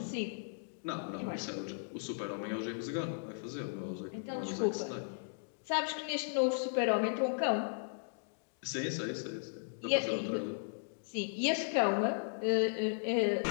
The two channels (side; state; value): right; silent; digital silence